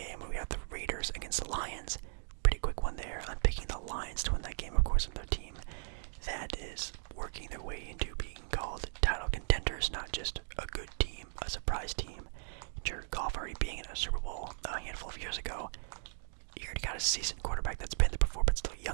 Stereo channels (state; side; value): silent; left; digital silence